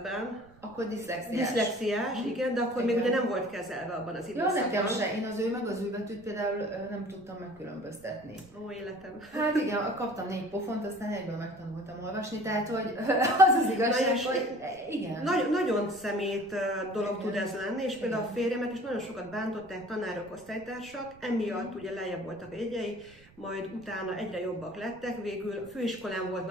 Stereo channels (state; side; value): noise; right; rumble, 25 dB below the sound